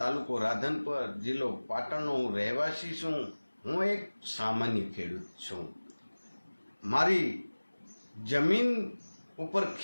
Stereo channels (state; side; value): inverted; both; correlation -1.00